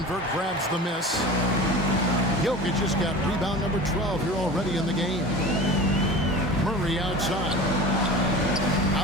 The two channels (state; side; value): normal; both; correlation 0.35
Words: grabs the miss. Jokic just got rebound number 12 here already in the game. Murray outside.